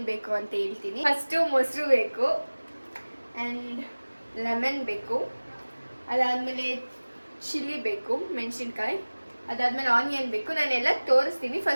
ಬೇಕು ಅಂತ ಹೇಳ್ತೀನಿ. ಫಸ್ಟು ಮೊಸರು ಬೇಕು ಆ್ಯಂಡ್ ಲೆಮನ್ ಬೇಕು, ಅದಾದಮೇಲೆ ಚಿಲ್ಲಿ ಬೇಕು, ಮೆಣಸಿನ್ಕಾಯಿ, ಅದಾದ್ಮೇಲೆ ಆನಿಯನ್ ಬೇಕು. ನಾನೆಲ್ಲ ತೋರಿಸ್ತೀನಿ.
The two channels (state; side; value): inverted; both; correlation -1.00